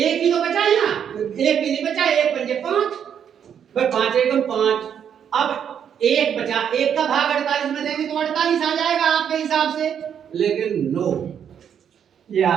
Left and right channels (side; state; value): left; quieter; 8.4 dB